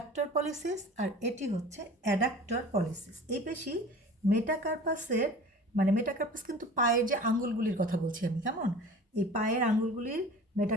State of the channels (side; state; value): both; normal; correlation 0.41